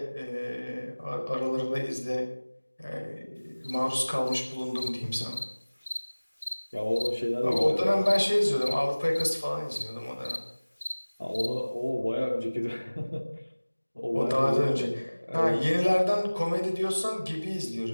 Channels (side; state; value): both; inverted; correlation -1.00